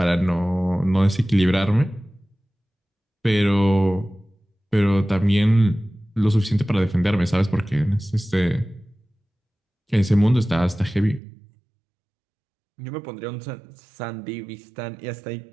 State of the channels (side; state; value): left; drops out; at 11.2 s